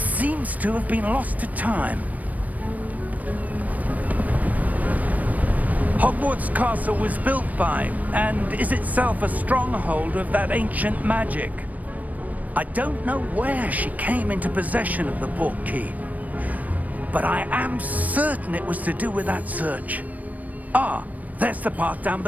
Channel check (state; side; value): late; left; 0.074 ms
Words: to have been lost to time. Hogwarts Castle was built by, and is itself a stronghold of that ancient magic. I don't know where she came into possession of the portkey, but I am certain it was to do with that search. Ah, there's the path down